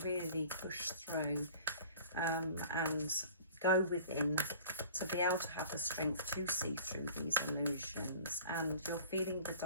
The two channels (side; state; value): both; inverted; correlation -0.46